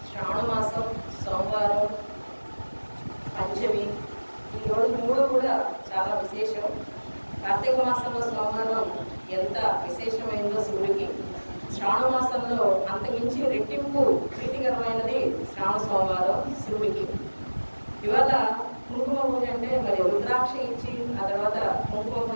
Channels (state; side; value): inverted; both; correlation -1.00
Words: శ్రావణ మాసం సోమవారం పంచమి. ఈ రోజు 3 కూడా చాలా విశేషం. కార్తీక మాసంలో సోమవారం ఎంత విశేషమైందో శివుడికి, శ్రావణ మాసంలో అంతమించి రెట్టింపు ప్రీతికరమైనది శ్రావణ సోమవారం శివుడికి. ఇవాళ కుంకుమ పూజ అంటే మరి రుద్రాక్ష ఇచ్చి ఆ తర్వాత కుంకుమ